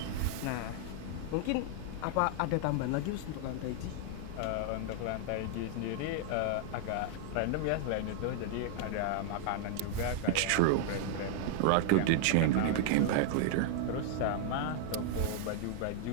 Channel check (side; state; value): both; different; correlation -0.01